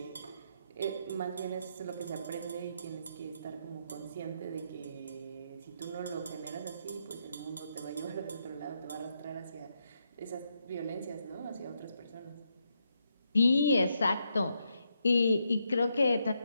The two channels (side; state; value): both; inverted; correlation -0.80